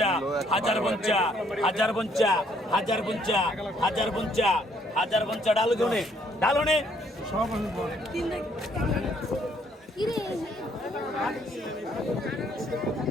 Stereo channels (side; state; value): both; normal; correlation 0.66